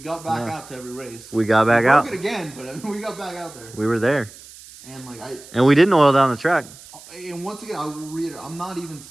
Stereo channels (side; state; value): right; noise; hiss, 19 dB below the sound